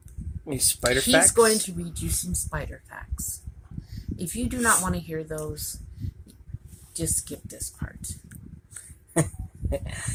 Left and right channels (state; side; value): identical; both; correlation 1.00